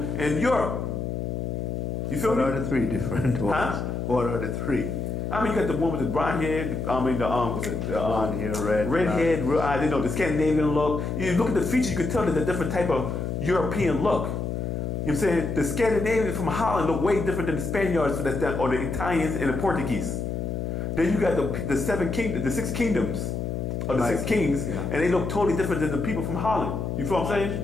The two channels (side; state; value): left; noise; hum, 3 dB below the sound